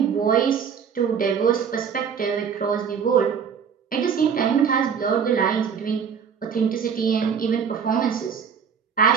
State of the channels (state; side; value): quieter; left; 7.0 dB